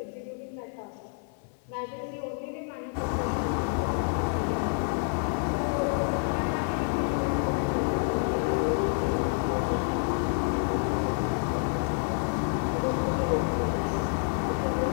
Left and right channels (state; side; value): silent; right; 58 dB below the other